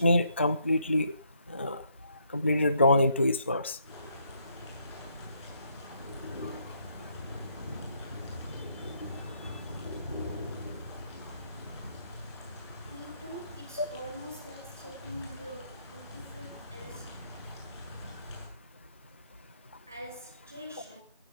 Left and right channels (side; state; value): both; inverted; correlation -0.72